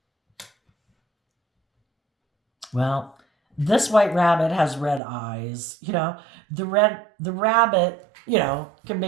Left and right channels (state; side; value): drops out; left; at 5.0 s